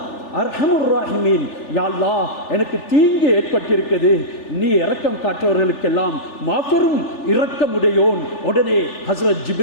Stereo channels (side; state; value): right; late; 3.4 ms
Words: அர்ஹமுர் ராஹிமீன். யா அல்லாஹ், எனக்கு தீங்கு ஏற்பட்டிருக்கிறது, நீ இரக்கம் காட்டுறவர்களுக்கெல்லாம் மாபெரும் இரக்கமுடையோன். உடனே ஹஸ்ரத்